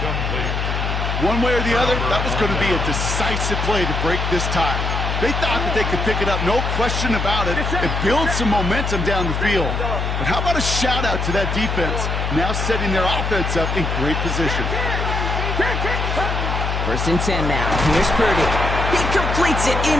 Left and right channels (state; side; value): noise; left; hum, 1 dB below the sound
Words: One way or the other, that was going to be a decisive play to break this tie. They thought that they could pick it up, no question about it, and build some momentum down the field. But how about a shout-out to that defense, now setting their offense up in great position. 1st and 10 now. Here's Purdy. He completes it